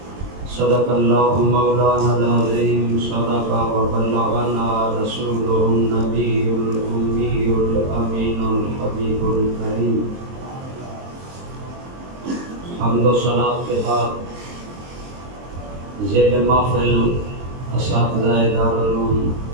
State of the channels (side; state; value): left; late; 23 ms